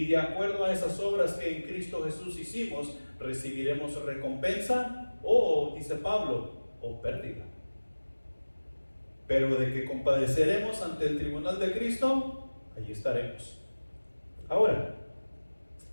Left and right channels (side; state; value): both; inverted; correlation -1.00